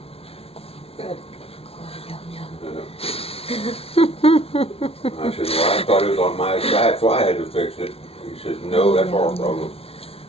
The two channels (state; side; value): late; right; 0.28 ms